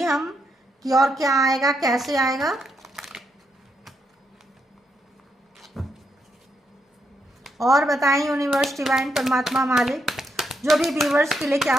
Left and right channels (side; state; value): both; normal; correlation 0.80